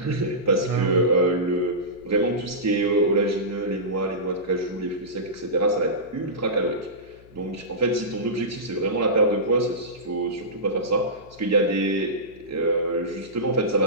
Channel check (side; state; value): left; noise; hum, 25 dB below the sound